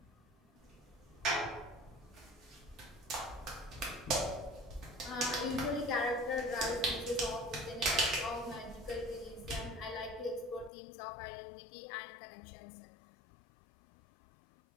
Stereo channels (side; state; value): right; drops out; at 10.7 s